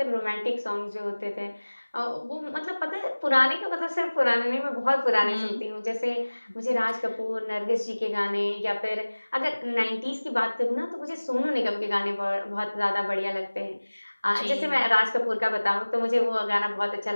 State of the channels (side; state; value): both; inverted; correlation -1.00